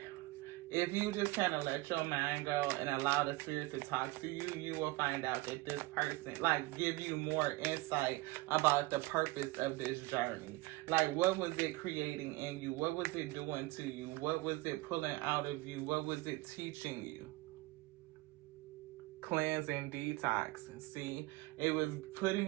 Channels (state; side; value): quieter; left; 21.2 dB